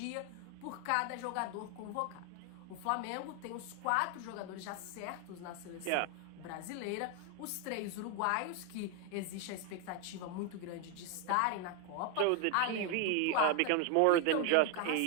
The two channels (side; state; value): both; different; correlation 0.01